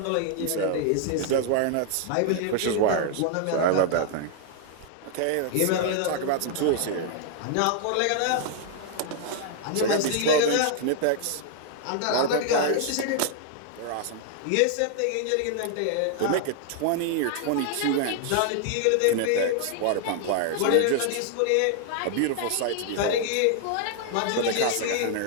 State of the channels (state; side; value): different; both; correlation 0.00